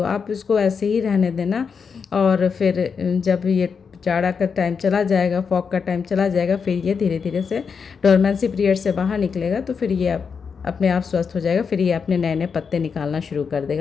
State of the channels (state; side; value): quieter; right; 6.0 dB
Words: आप इसको ऐसे ही रहने देना। और फिर जब ये जाड़ा का टाइम चला जाएगा, फॉग का टाइम चला जाएगा, फिर ये धीरे धीरे से डोरमेंसी पीरियड से बाहर निकलेगा तो फिर ये अपने आप स्वस्थ हो जाएगा, फिर ये अपने नए नए पत्ते निकालना शुरू कर